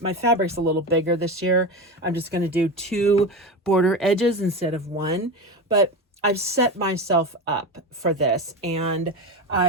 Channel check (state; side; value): normal; both; correlation 0.22